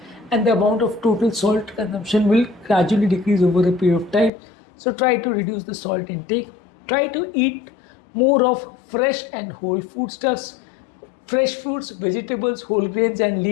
and the amount of total salt consumption will gradually decrease over a period of time. So try to reduce the salt intake. Try to eat more of fresh and whole foodstuffs. Fresh fruits, vegetables, whole grains and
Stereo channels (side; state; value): right; drops out; at 4.3 s